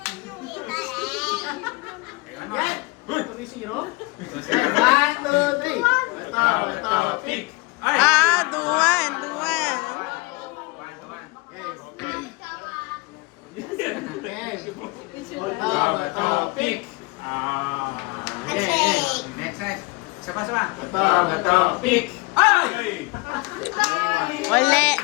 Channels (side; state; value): right; quieter; 26.1 dB